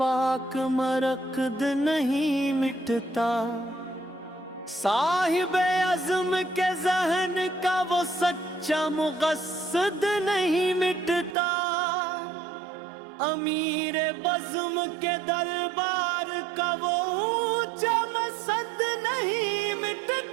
मरकद नहीं मिटता, साहिबे अज़्म के ज़हन का वो सच्चा मुक़स्सद नहीं मिटता, अमीर बज़्म के दरबार का वो ऊंचा मसद नहीं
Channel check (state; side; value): drops out; left; at 11.4 s